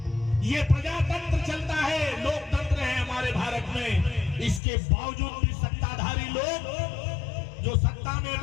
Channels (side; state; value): right; drops out; at 4.6 s